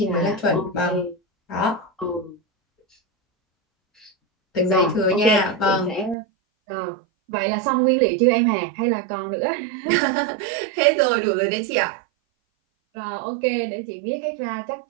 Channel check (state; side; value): drops out; left; at 6.2 s